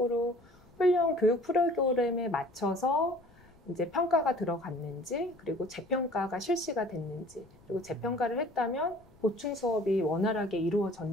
훈련 교육 프로그램에 맞춰서 이제 평가가 들어갔는지, 그리고 재평가가 실시가 됐는지, 그리고 재평가를 했다면 보충 수업이 원활하게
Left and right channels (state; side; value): noise; left; rumble, 27 dB below the sound